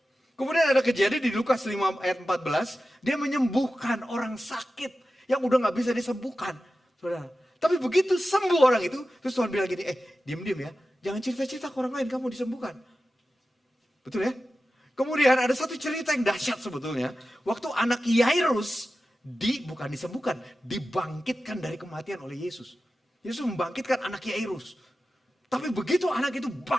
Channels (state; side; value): normal; both; correlation 0.93